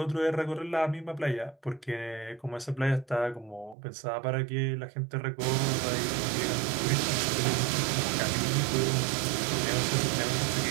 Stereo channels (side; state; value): left; drops out; at 3.8 s